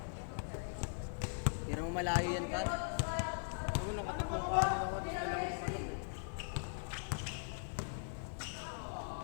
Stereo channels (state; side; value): silent; right; 51 dB below the other